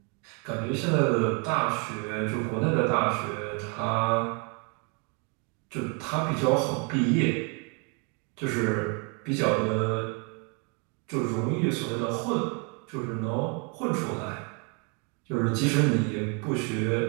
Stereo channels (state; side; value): quieter; left; 34.8 dB